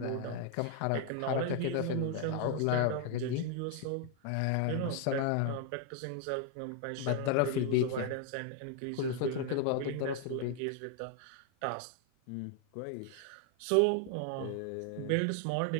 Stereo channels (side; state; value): both; different; correlation 0.00